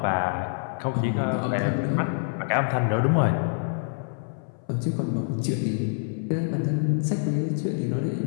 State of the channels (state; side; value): silent; right; 61 dB below the other